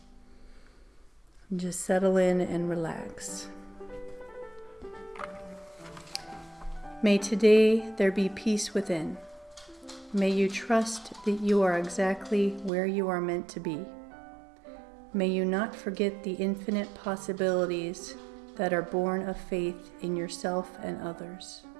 Just settle in and relax. May today there be peace within. May you trust that you are exactly where you are meant to be. May you not forget the infinite possibilities that are born of faith in yourself and others.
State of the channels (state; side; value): drops out; left; at 12.7 s